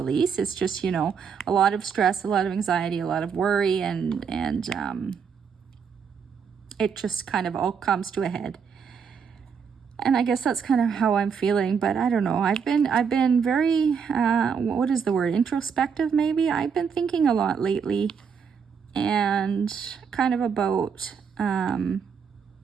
It's just, you know, a lot of stress, a lot of anxiety, a lot of worry, and it just kind of all comes to a head. And I guess that's kind of how I'm feeling, but I don't know. I've been very, what is the word? Introspective, maybe? I've been thinking a lot lately, and kind of about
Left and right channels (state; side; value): quieter; left; 6.5 dB